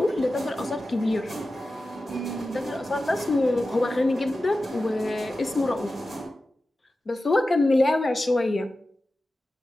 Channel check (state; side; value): normal; both; correlation 0.94